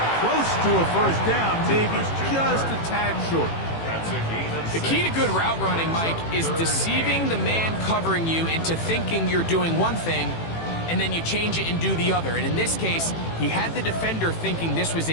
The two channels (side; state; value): right; late; 18 ms